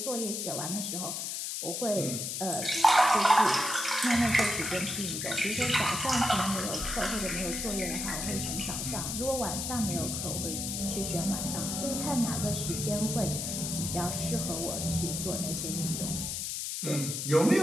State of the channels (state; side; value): noise; left; hiss, 3 dB below the sound